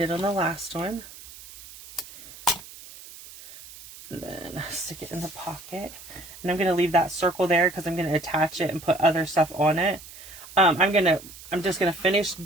on the last one. And then stick it in the pocket. And I'm going to leave that circle there because I'm going to attach it and put other stuff on it. I'm just going to finish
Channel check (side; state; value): right; noise; hiss, 17 dB below the sound